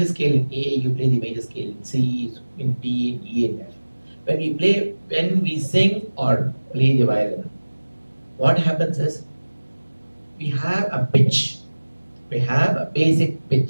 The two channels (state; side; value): inverted; both; correlation -1.00